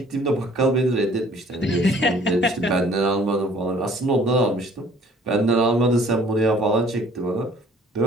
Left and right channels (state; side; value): normal; both; correlation 0.55